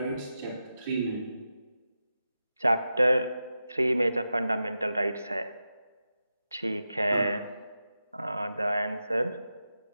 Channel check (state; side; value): inverted; both; correlation -0.91